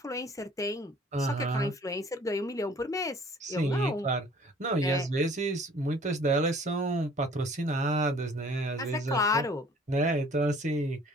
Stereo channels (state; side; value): normal; both; correlation 0.53